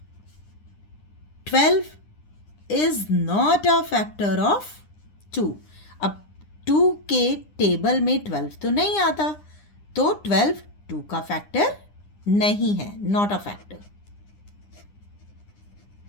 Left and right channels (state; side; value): late; right; 9.9 ms